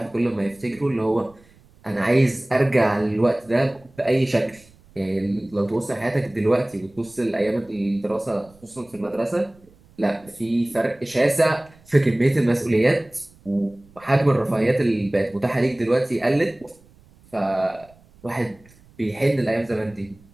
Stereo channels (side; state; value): right; noise; rumble, 28 dB below the sound